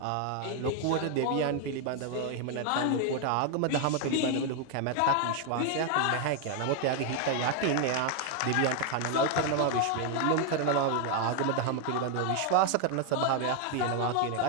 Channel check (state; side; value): different; both; correlation 0.01